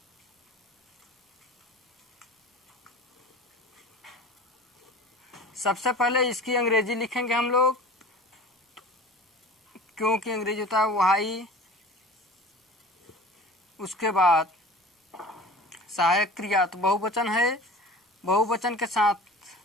सबसे पहले इसकी अंग्रेजी लिखेंगे हम लोग, क्योंकि अंग्रेजी होता है वाई। उसके बाद सहायक क्रिया, तो बहुवचन है, बहुवचन के साथ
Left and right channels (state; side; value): normal; both; correlation 0.39